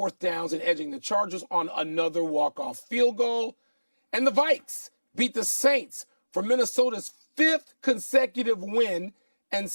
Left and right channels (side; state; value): both; inverted; correlation -1.00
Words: downs and edging the Chargers on another walk-off field goal. And the Vikes beat the Saints for Minnesota's 5th consecutive win and